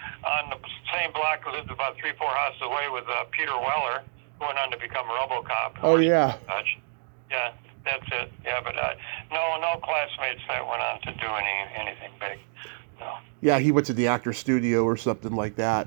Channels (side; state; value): left; silent; digital silence